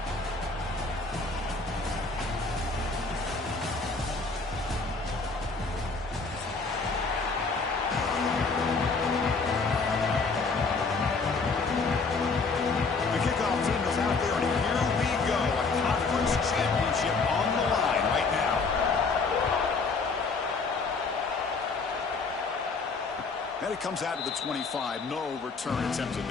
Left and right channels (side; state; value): right; quieter; 4.3 dB